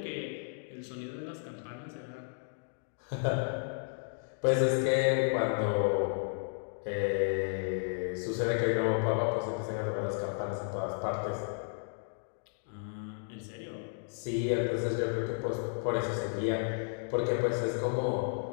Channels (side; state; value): right; silent; digital silence